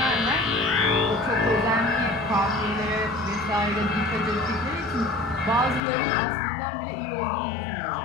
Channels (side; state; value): right; drops out; at 5.8 s